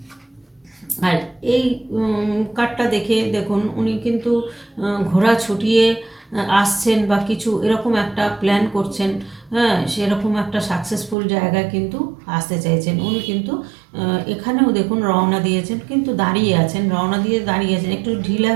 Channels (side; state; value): left; drops out; at 11.2 s